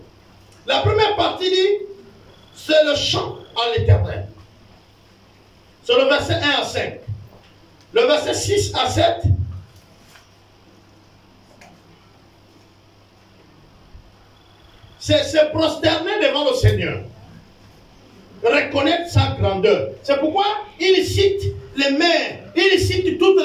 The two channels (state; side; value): identical; both; correlation 1.00